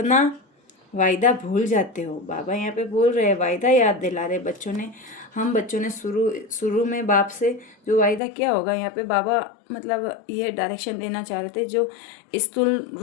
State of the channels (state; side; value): drops out; right; at 8.2 s